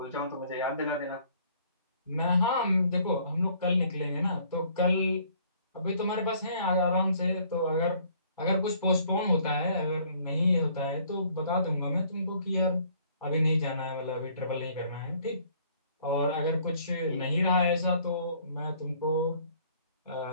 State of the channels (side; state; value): both; inverted; correlation -0.59